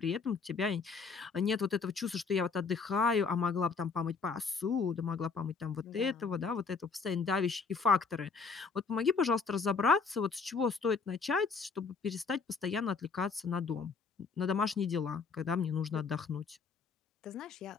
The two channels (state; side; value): quieter; right; 5.0 dB